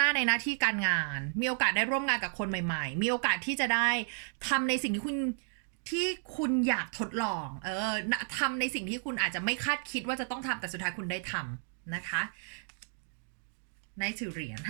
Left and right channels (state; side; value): silent; left; 56 dB below the other